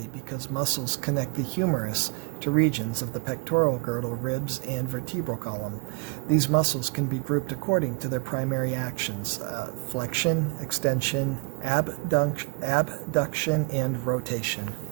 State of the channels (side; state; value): left; quieter; 30.9 dB